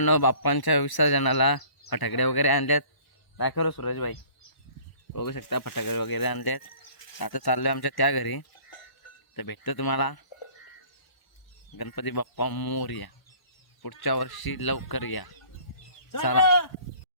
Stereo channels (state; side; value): late; right; 1.0 ms